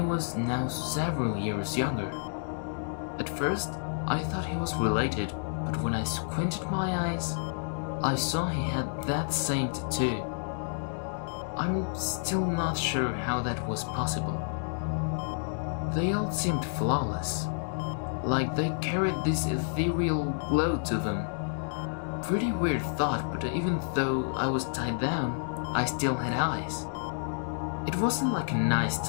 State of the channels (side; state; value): right; silent; digital silence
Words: now several years younger. At first, I thought he was related, but when I squinted my eyes, I saw he had that same tattoo. I'm still not sure how that was possible. They all seemed flawless, like they carried this ethereal glow to them. Pretty weird thought, but even though I was tied down, I still had eyes. It wasn't like a nice